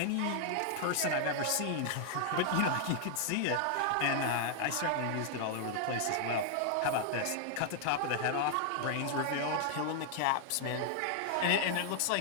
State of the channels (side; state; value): both; different; correlation 0.00